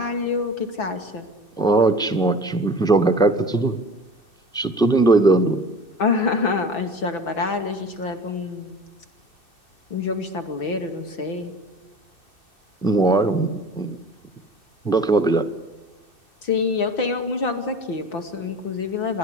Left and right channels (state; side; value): late; right; 2.6 ms